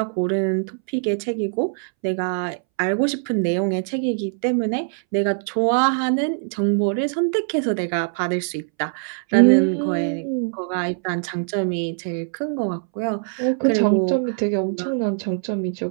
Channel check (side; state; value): left; silent; 64 dB below the other